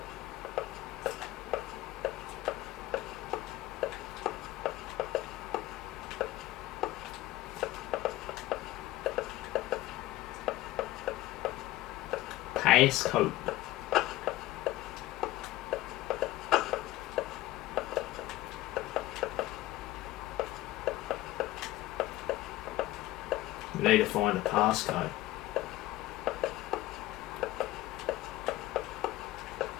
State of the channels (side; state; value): right; quieter; 16.7 dB